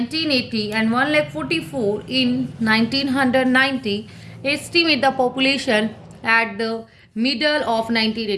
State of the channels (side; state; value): both; identical; correlation 1.00